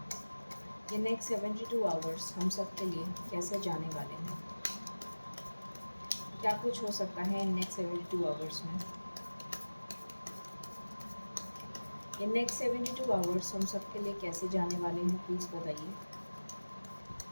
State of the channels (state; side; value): inverted; both; correlation -1.00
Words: ये नेक्स्ट 72 आवर्स हम सब के लिए कैसे जाने वाले हैं। क्या कुछ हो सकता है इन नेक्स्ट 72 आवर्स में। ये नेक्स्ट 72 आवर्स हम सब के लिए कैसे जाने वाले हैं, प्लीज़ बताइए।